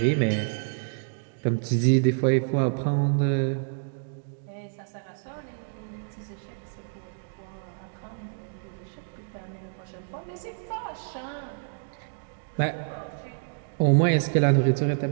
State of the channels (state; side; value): silent; left; digital silence